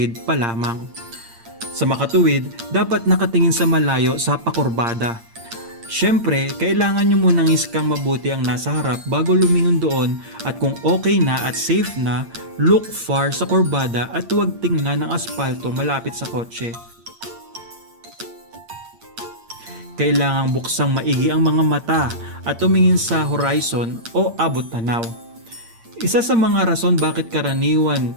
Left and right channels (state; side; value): late; left; 8.7 ms